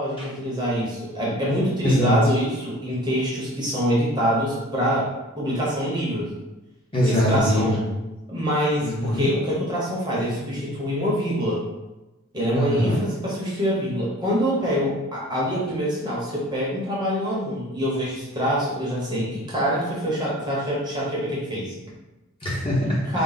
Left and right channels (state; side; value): normal; both; correlation 0.47